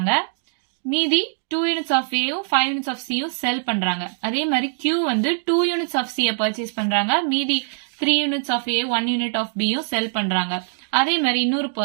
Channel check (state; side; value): silent; left; digital silence